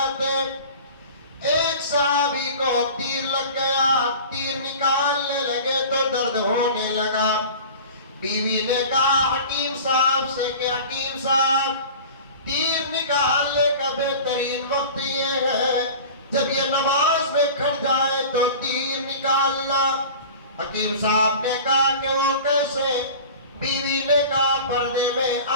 ایک صحابی کو تیر لگ گیا، تیر نکالنے لگے تو درد ہونے لگا۔ بیوی نے کہا حکیم صاحب سے کہ حکیم صاحب، تیر نکالنے کا بہترین وقت یہ ہے جب یہ نماز میں کھڑ جائے تو تیر نکالنا۔ حکیم صاحب نے کہا کہ وہ کیسے؟ بیوی نے کہا پردے میں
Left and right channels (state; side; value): inverted; both; correlation -0.38